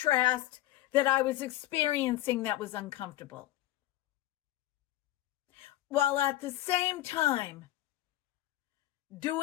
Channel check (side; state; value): right; quieter; 15.1 dB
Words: that I was experiencing that was uncomfortable, while at the same time